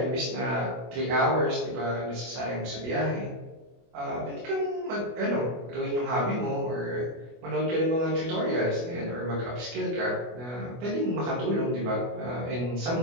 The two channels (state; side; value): late; left; 24 ms